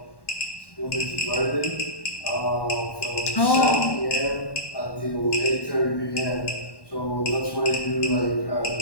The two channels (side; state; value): right; late; 1.1 ms